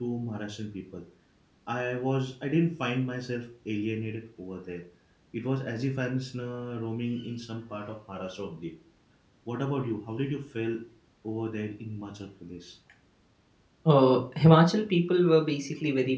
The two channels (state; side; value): identical; both; correlation 1.00